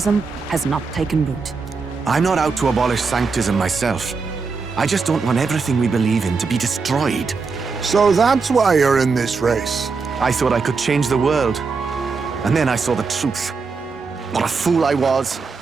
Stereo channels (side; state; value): left; quieter; 4.7 dB